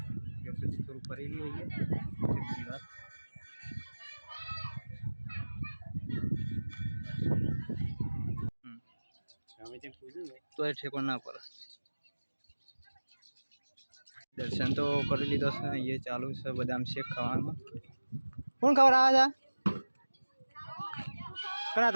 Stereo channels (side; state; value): both; inverted; correlation -1.00